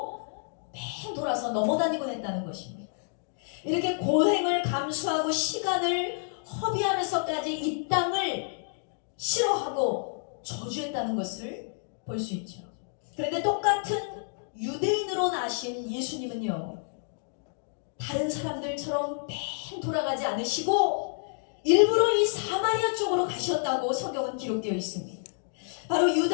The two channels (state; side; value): silent; right; digital silence